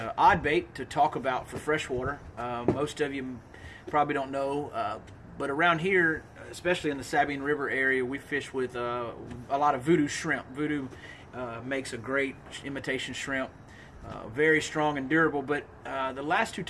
odd bait to talk about for freshwater. Most of you probably don't know, but around here, especially in the Sabine River area, we fish with a lot of voodoo shrimp. Voodoo makes a great imitation shrimp. Very strong and durable, but the last two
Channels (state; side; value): identical; both; correlation 1.00